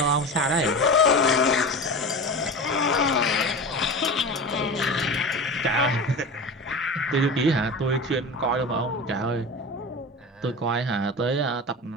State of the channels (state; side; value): normal; both; correlation 0.29